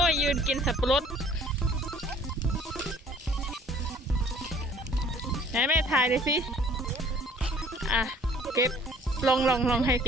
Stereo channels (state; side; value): normal; both; correlation 0.54